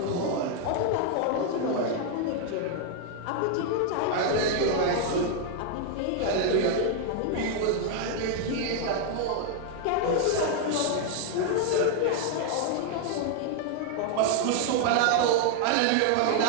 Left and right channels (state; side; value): different; both; correlation 0.00